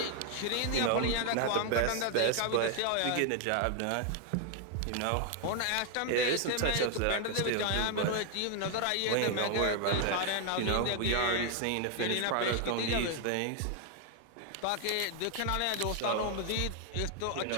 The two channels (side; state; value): both; different; correlation 0.00